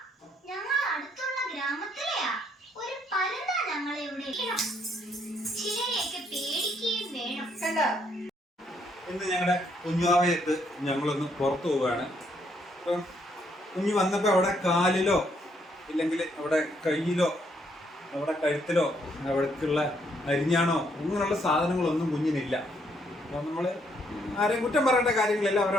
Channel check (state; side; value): normal; both; correlation 0.71